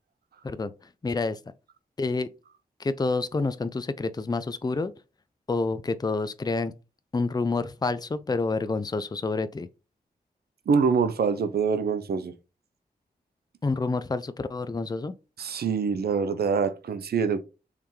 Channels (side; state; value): both; normal; correlation 0.59